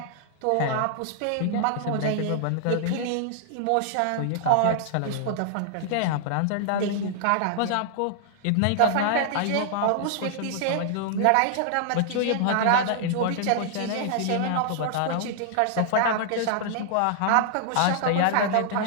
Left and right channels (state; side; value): different; both; correlation -0.01